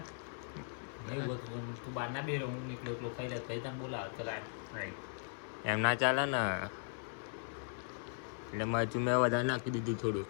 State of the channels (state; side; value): silent; right; digital silence